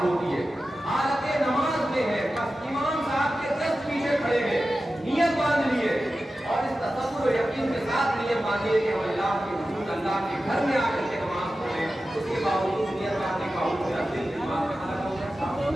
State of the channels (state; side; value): normal; both; correlation 0.93